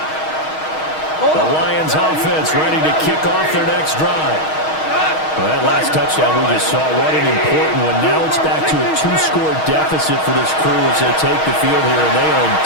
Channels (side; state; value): right; late; 6.4 ms